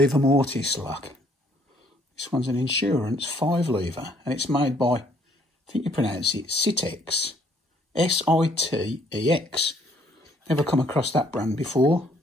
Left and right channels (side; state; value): both; normal; correlation 0.64